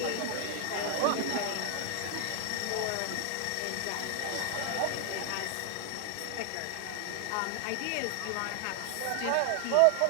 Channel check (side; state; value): both; different; correlation 0.00